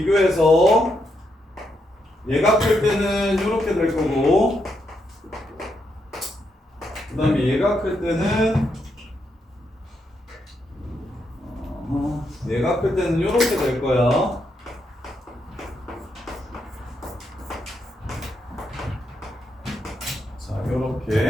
얘가 클 때는 이렇게 될 거고 그 다음에 얘가 클 때는 얘가 클 때는 이렇게 될 거야. 자,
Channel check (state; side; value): normal; both; correlation 0.80